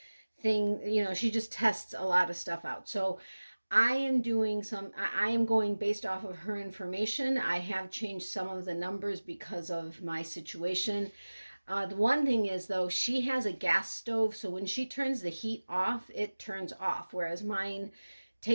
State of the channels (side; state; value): both; inverted; correlation -1.00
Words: you know, she just tests a lot of stuff out. So I am going based off of her information. I have changed some of the numbers because of my situation. The one thing is, though, she has a gas stove, so when she turns the heat off, it turns off, whereas mine